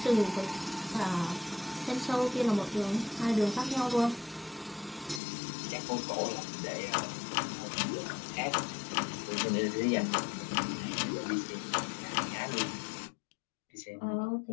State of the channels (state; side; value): drops out; right; at 5.2 s